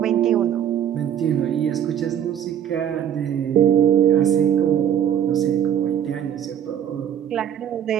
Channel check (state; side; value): quieter; left; 9.6 dB